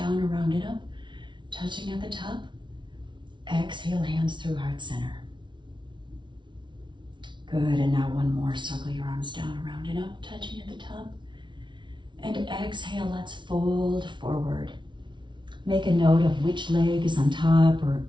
around and up, touching at the top. Exhale, hands through heart center. Good, and now 1 more. Circle your arms down, around and up, touching at the top. And exhale, let's fold forward. Make a note of which leg is on top or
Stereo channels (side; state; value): left; late; 0.23 ms